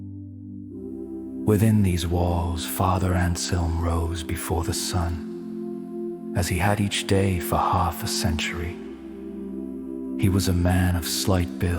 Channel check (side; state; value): both; identical; correlation 1.00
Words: Within these walls, Father Anselm rose before the sun, as he had each day for half a century. He was a man of slight